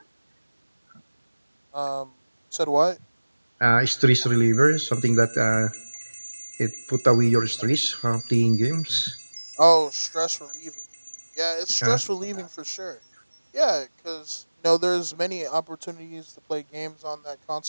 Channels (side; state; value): both; inverted; correlation -1.00